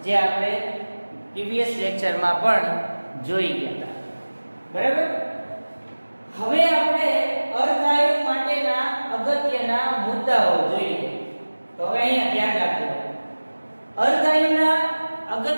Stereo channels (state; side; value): inverted; both; correlation -1.00